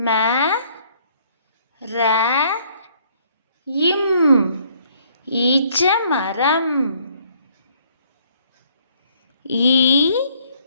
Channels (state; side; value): inverted; both; correlation -0.64